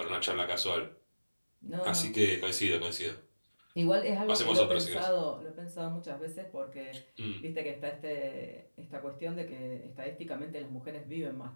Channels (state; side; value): inverted; both; correlation -1.00